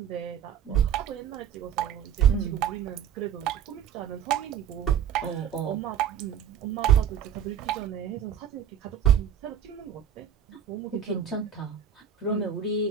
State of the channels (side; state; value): left; quieter; 8.8 dB